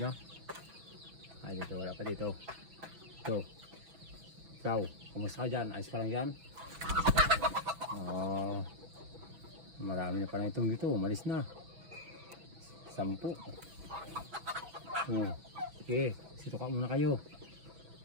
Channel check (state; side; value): late; left; 6.0 ms